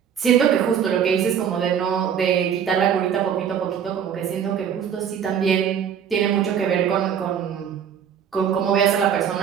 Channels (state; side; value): quieter; left; 8.3 dB